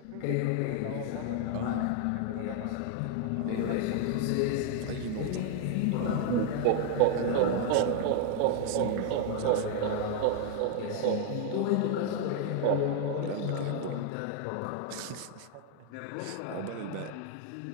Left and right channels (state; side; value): different; both; correlation 0.00